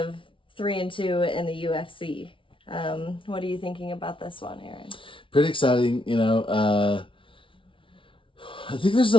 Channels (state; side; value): late; right; 0.25 ms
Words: 3-2 in the UFC. What are you thinking about this one, Aaron? Pretty exciting. I think there's